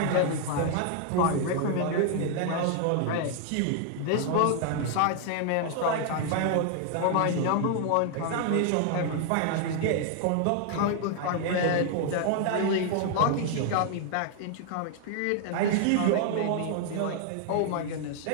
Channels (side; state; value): both; different; correlation 0.00